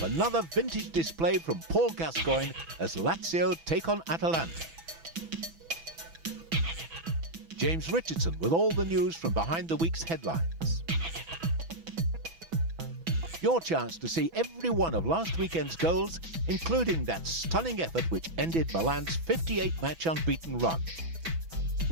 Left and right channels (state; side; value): late; left; 6.0 ms